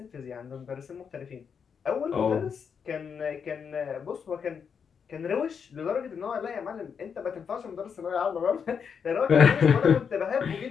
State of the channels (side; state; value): right; quieter; 6.7 dB